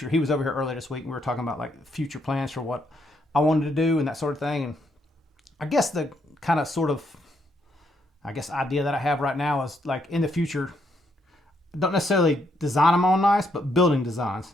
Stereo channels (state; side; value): normal; both; correlation 0.75